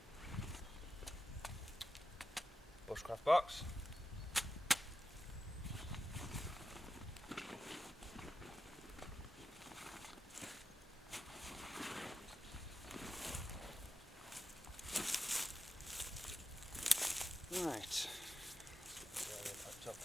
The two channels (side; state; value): both; normal; correlation 0.91